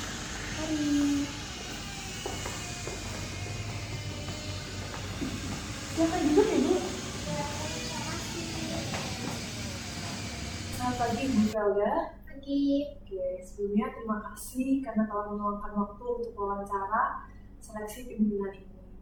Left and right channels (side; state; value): both; identical; correlation 1.00